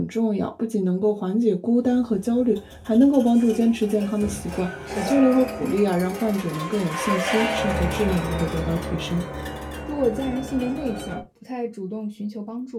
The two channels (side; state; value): both; identical; correlation 1.00